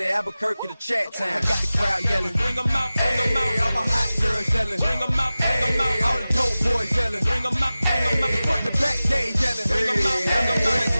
Albuquerque to Chat Town. I got the crowd yelling, bring 'em out, bring 'em out. All my hot girls yelling, bring 'em out, bring 'em out. All the dope boys yelling, bring 'em out, bring 'em out. Front the back, they yelling, bring 'em out, bring 'em out.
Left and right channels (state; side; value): inverted; both; correlation -0.96